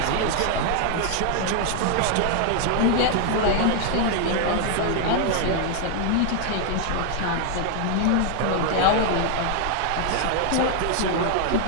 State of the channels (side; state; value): both; different; correlation 0.00